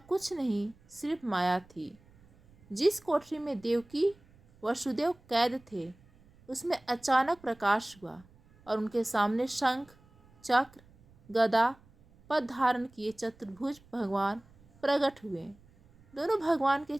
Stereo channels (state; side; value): noise; right; rumble, 28 dB below the sound